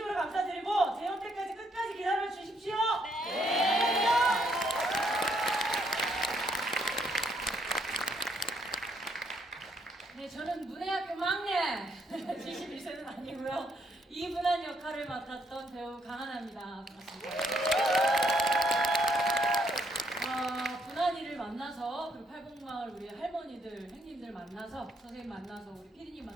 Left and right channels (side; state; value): both; normal; correlation 0.72